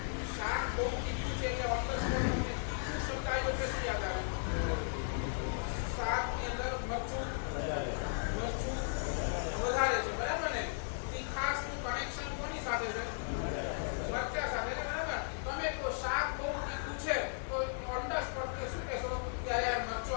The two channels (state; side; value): silent; right; digital silence